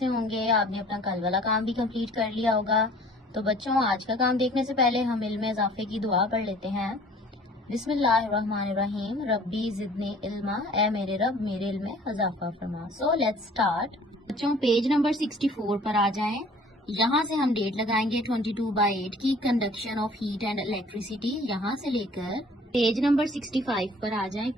होंगे। आपने अपना कल वाला काम भी कंप्लीट कर लिया होगा। तो बच्चों, आज का काम देखने से पहले हम इल्म इजाफे की दुआ पढ़ लेते हैं। बिस्मिल्लाहिर्रहमानिर्रहीम। रब्बी ज़िदनी इल्मा, ए मेरे रब मेरे इल्म में इजाफा फरमा। So let's start. बच्चों, पेज नंबर 64 पर आ जाएं। यहाँ से हम डेट लगाएंगे 22/8 की, conduction of heat and electricity. यहाँ से लेकर पेज नंबर 65 पर आ जाएं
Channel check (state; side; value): normal; both; correlation 0.51